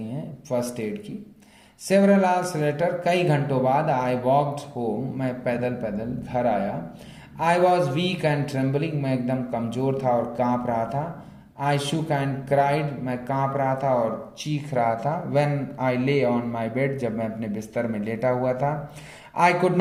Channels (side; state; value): both; identical; correlation 1.00